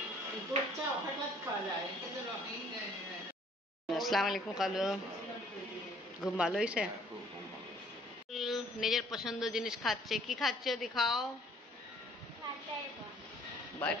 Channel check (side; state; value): both; normal; correlation 0.59